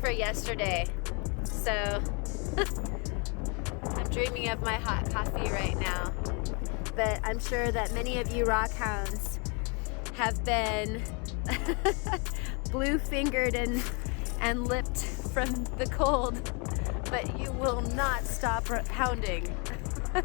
yesterday. So I'm dreaming of my hot coffee right now. But I'm sure that many of you rockhounds have been blue-fingered and lipped from the cold, but you will not stop hounding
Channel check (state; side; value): quieter; right; 34.4 dB